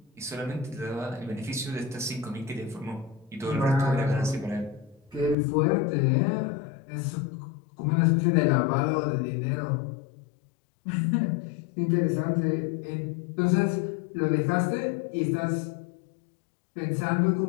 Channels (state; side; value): drops out; right; at 5.4 s